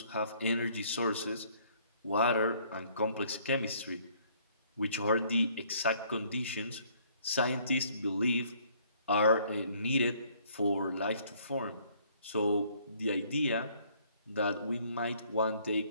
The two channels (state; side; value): inverted; both; correlation -0.61